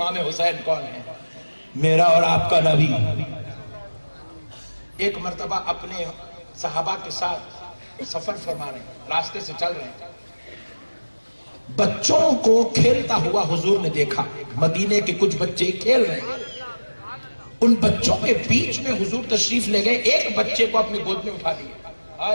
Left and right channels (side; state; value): both; inverted; correlation -1.00